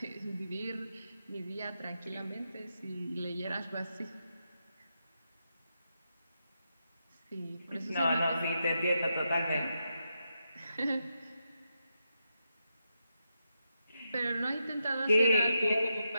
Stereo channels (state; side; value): inverted; both; correlation -0.85